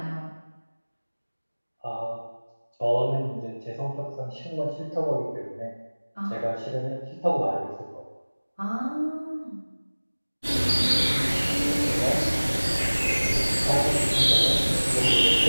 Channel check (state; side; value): inverted; both; correlation -1.00